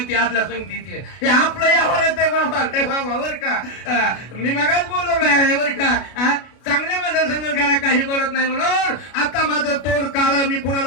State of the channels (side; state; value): right; late; 33 ms